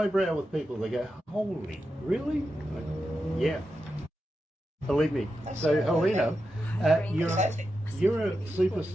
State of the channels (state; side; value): normal; both; correlation 0.89